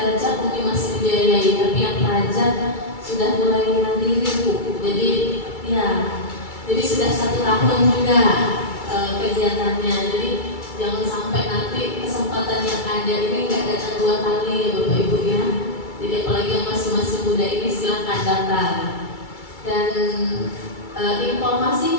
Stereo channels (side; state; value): right; late; 2.3 ms